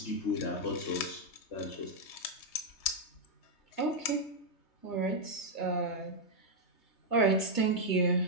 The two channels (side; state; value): right; late; 3.2 ms